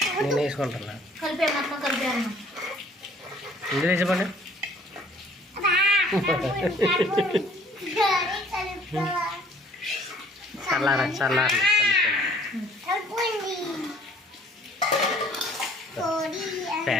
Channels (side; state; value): both; normal; correlation 0.56